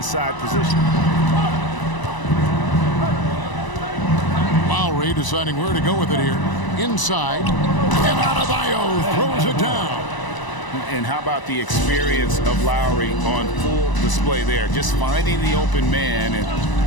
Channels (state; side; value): late; right; 1.0 ms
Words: position. Lowry deciding where to go with it here. Inside. And Adebayo throws it down. And how about the experience of Lowry on full display there? Just finding the open man, and